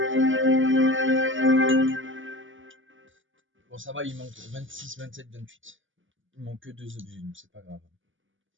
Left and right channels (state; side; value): late; left; 0.57 ms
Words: Bon, ça va, il manque 26, 27, 28. Il manque que 2 objets, donc c'est pas grave.